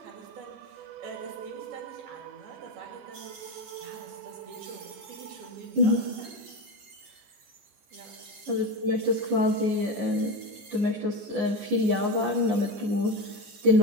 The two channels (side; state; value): left; late; 14 ms